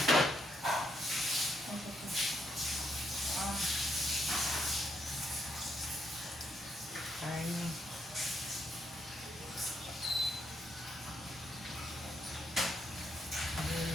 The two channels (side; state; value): both; normal; correlation 0.76